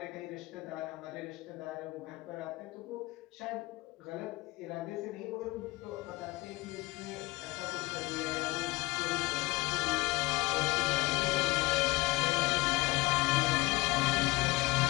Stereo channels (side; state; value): right; quieter; 21.3 dB